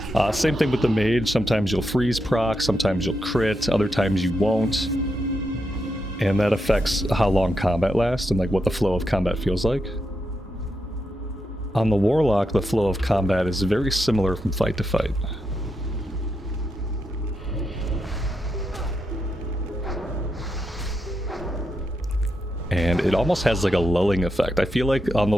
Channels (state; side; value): normal; both; correlation 0.84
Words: Same thing with the mage, sometimes you'll freeze proc, sometimes you'll crit, other times you won't. And that affects how long combat lasts and like what the flow of combat feels like. On the Warlock, the flow of combat is very similar from fight to fight. And it almost has like a lulling effect. I feel like on the